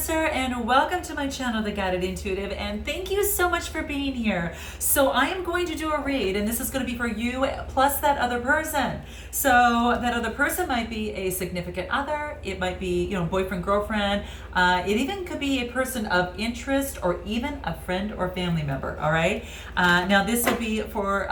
and welcome to my channel, The Guided Intuitive, and thank you so much for being here. So I am going to do a read, and this is going to be for you plus that other person. So that other person might be a significant other, it might be, boyfriend, girlfriend, it even could be a person of interest or even a friend or family member, all right? Now this will be for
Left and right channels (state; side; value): identical; both; correlation 1.00